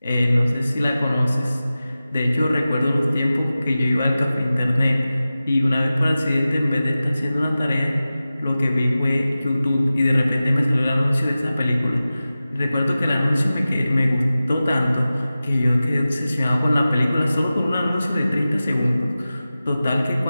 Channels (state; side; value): inverted; both; correlation -0.95